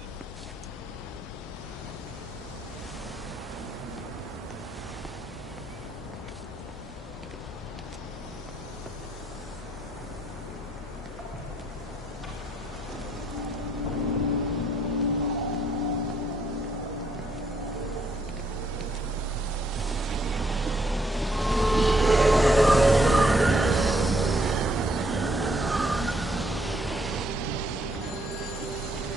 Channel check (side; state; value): both; normal; correlation 0.71